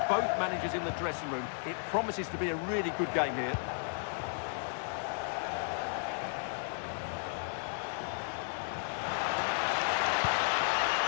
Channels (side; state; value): right; silent; digital silence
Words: both managers in the dressing room. It promises to be a really good game here.